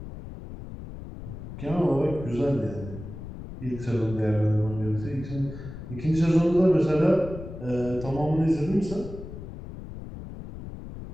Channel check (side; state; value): left; noise; rumble, 11 dB below the sound